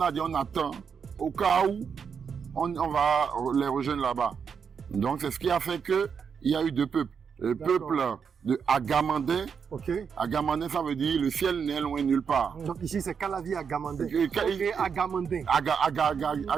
dit, on attend au cas où on va les rejoindre là-bas. Donc, c'est ce qui a fait que il y a eu 2 peuples. Le D'accord. peuple de Agamandin. Ok. Agamandin, ça veut dire le ciel n'est loin nulle part. Donc ici, c'est Calavi à Gamandé. Et- Ok, à Gamandé.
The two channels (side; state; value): left; quieter; 6.6 dB